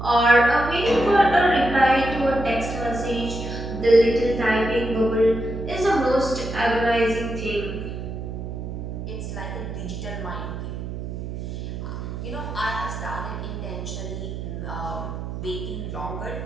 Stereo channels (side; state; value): right; noise; hum, 6 dB below the sound